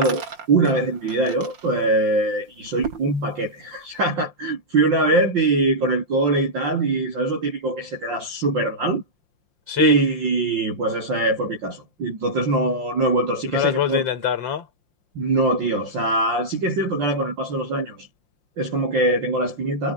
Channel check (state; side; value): late; left; 5.7 ms